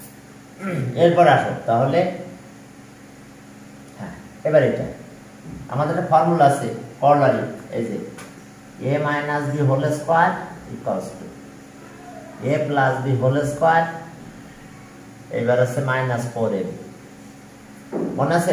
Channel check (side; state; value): both; identical; correlation 1.00